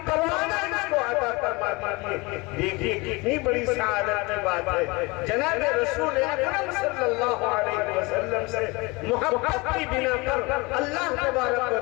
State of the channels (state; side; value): quieter; right; 25.2 dB